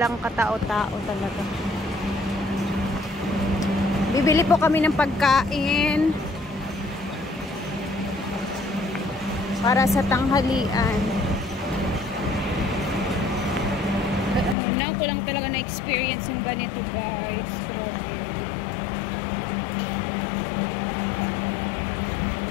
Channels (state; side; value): drops out; right; at 14.6 s